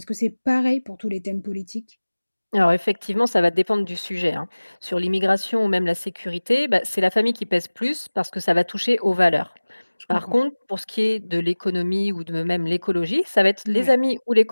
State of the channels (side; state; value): both; inverted; correlation -1.00